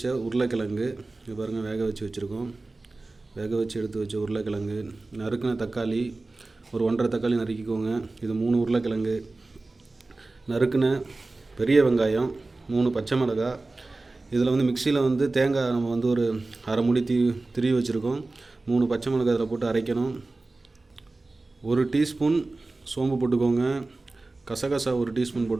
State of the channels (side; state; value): left; quieter; 3.2 dB